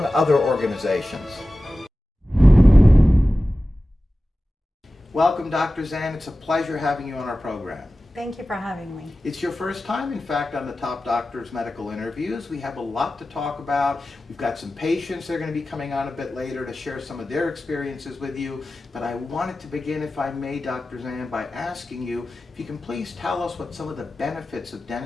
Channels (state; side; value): normal; both; correlation 0.95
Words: other organizations. Welcome, Dr. Zand. It's a pleasure having you on our program. Thank you for having me. It's your first time, in fact, on the Top Doctors Medical Interviews. We have a lot to talk about. We've got some patients that are going to be coming on a bit later to share some of their experiences with you. But I wanted to begin, if I may, Dr. Zand, by asking you if you can please tell us what some of the benefits of